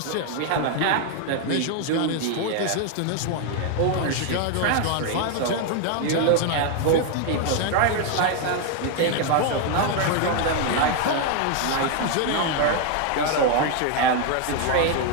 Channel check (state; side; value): different; both; correlation 0.01